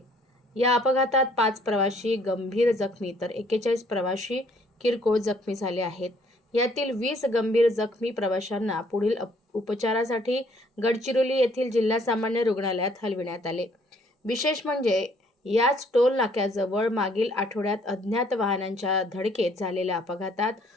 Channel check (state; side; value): normal; both; correlation 0.63